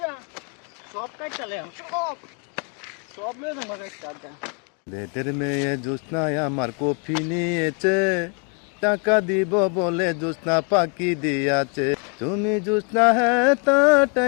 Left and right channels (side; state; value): right; quieter; 37.6 dB